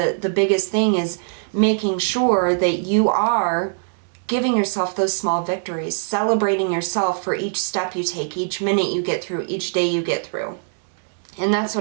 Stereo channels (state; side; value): silent; left; 65 dB below the other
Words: biggest thing is making sure that you are giving yourself those small victories, celebrating yourself for each step you take, each minute you get through, each day you get through. And that's